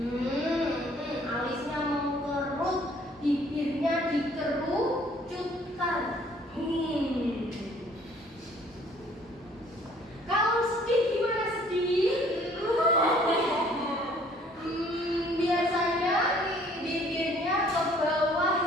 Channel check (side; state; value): both; normal; correlation 0.58